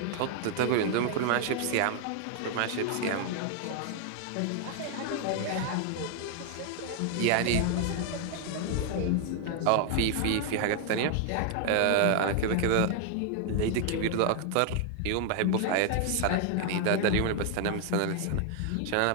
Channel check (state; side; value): different; both; correlation 0.00